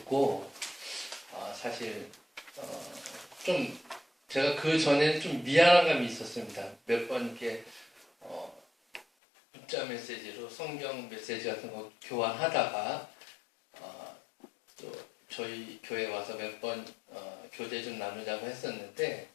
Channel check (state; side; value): drops out; right; at 9.1 s